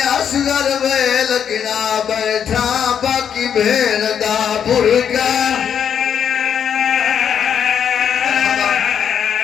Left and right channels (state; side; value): quieter; right; 8.2 dB